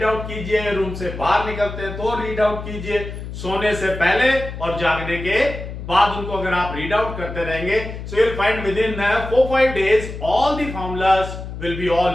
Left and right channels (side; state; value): left; noise; hum, 9 dB below the sound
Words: आउट कीजिए, रूम से बाहर निकलते हैं तो रीड आउट कीजिए, सोने से पहले और जागने के बाद उनको अगर आप रीड आउट करते रहेंगे, so you will find with in 4-5 days all the formulas will be